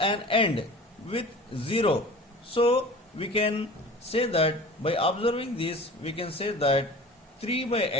an end with 0. So we can say that, by observing this, we can say that 3 by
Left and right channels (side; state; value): both; normal; correlation 0.40